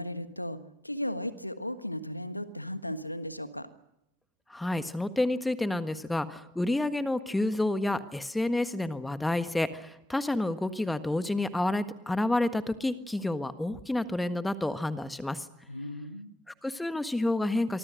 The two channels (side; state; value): both; normal; correlation 0.80